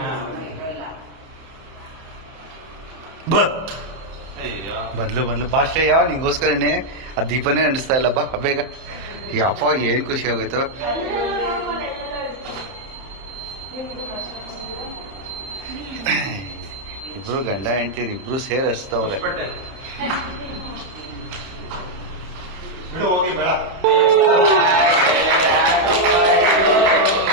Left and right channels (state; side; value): late; left; 31 ms